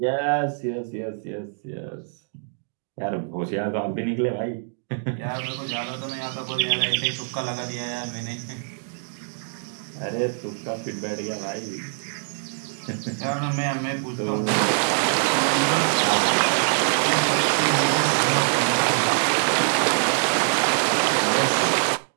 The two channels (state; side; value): silent; left; digital silence